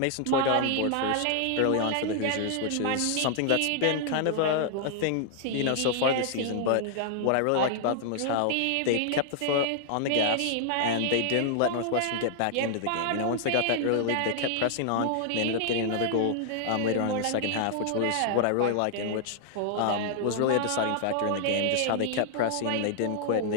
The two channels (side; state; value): both; different; correlation 0.00